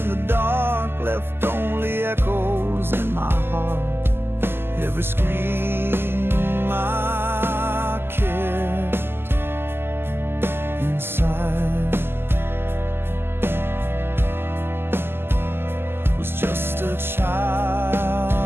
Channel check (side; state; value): left; late; 0.11 ms